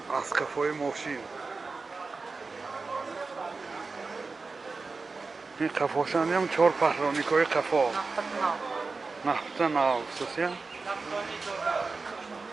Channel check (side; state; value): left; quieter; 4.1 dB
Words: اسقفای ماشین این قفاشانی هم 4 پهرانیک های قفا نفته ناو خصوصی